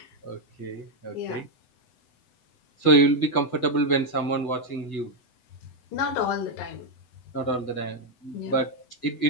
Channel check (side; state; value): right; late; 8.0 ms